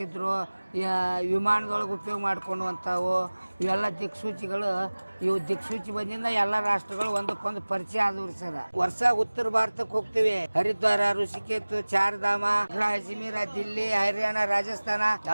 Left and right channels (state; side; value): inverted; both; correlation -1.00